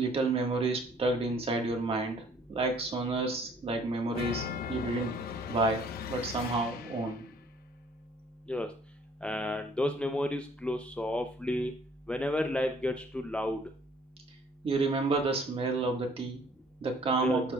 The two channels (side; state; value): both; normal; correlation 0.58